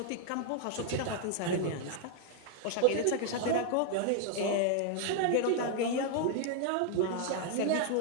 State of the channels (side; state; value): both; different; correlation 0.00